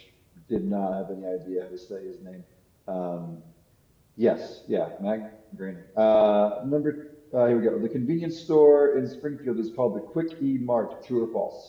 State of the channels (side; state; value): both; identical; correlation 1.00